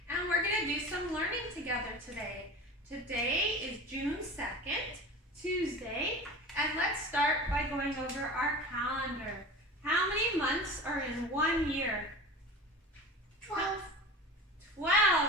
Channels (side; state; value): both; normal; correlation 0.34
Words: and we're going to do some learning together today. Today is June 2nd, Tuesday, and let's start by going over our calendar. How many months are in 1 year? 12. 12,